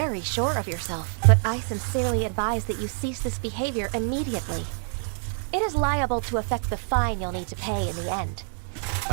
sure of yourself, but I sincerely advise that you cease this behavior immediately. It is liable to affect the fine you'll need to pay in the end.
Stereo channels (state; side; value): silent; left; 56 dB below the other